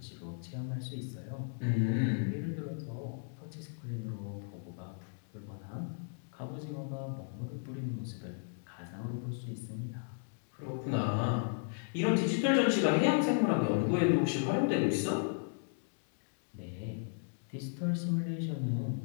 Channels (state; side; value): silent; right; digital silence